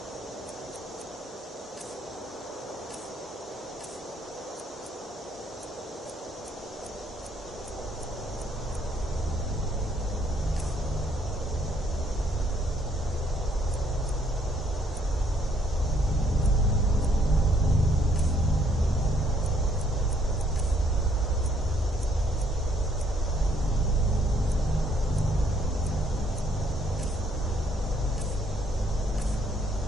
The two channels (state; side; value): normal; both; correlation 0.68